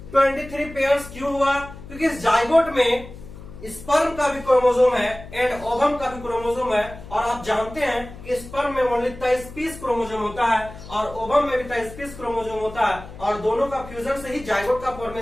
23 पेयर्स क्यों हुआ, क्योंकि इस जाइगोट में स्पर्म का भी क्रोमोसोम है एंड ओवम का भी क्रोमोसोम है। और आप जानते हैं कि स्पर्म में ओनली 23 पीस क्रोमोसोम होता है और ओवम में भी 23 पीस क्रोमोसोम होता है, और दोनों का फ्यूजन से ही जाइगोट का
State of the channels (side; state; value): left; noise; hum, 15 dB below the sound